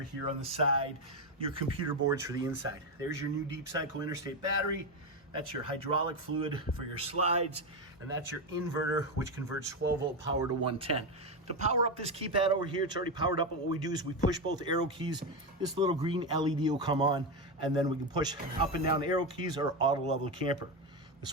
here on the side, your computer boards for the inside. There's your new deep cycle interstate battery. That's your hydraulic fluid for your slides, and that's your inverter, which converts 12-volt power to 110. To power up this keypad over here, it's already powered up, but what we do is we push both arrow keys. This little green LED will come on, and then we can push up and down the arrow keys or auto level camper. The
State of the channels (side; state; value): both; normal; correlation 0.12